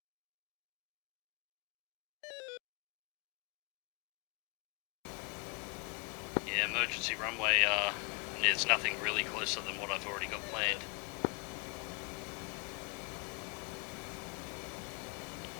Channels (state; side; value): quieter; right; 31.8 dB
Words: Yeah, emergency runway, there's nothing really closer than what I've already got planned.